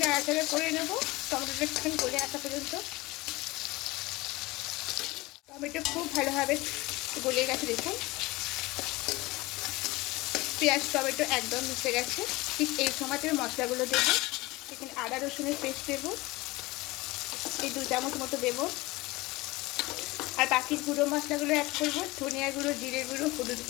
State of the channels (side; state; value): right; quieter; 21.4 dB